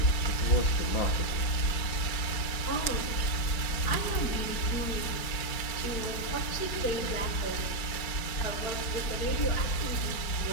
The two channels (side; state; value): right; late; 4.4 ms